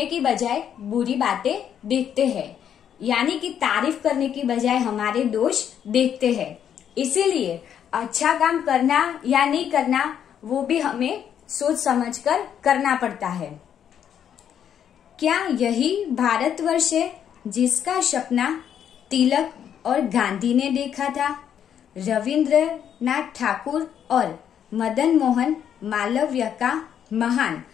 की बजाय बुरी बातें देखते हैं, यानी कि तारीफ करने की बजाय हमारे दोष देखते हैं। इसीलिए अच्छा काम करना या नहीं करना वो भी हमें सोच समझकर करना पड़ता है। क्या यही भारतवर्ष है जिसका सपना तिलक और गांधी ने देखा था? रविंद्रनाथ ठाकुर और मदन मोहन मालवीय का महान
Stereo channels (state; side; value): quieter; right; 9.0 dB